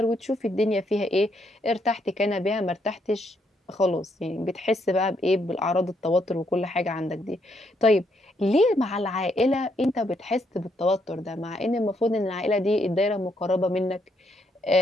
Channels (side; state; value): both; normal; correlation 0.74